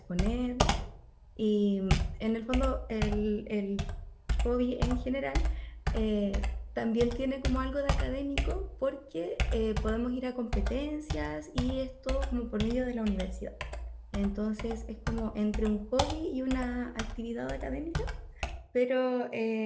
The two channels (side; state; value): both; identical; correlation 1.00